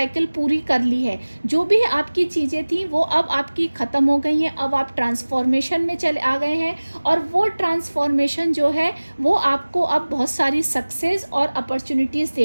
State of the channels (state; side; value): inverted; both; correlation -1.00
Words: पूरी कर ली है। जो भी आपकी चीज़ें थी वो अब आपकी ख़त्म हो गई हैं, अब आप ट्रांसफॉर्मेशन में चले आ गए हैं, और वो ट्रांसफॉर्मेशन जो है वो आपको अब बहुत सारी सक्सेस और अपॉर्चुनिटीज़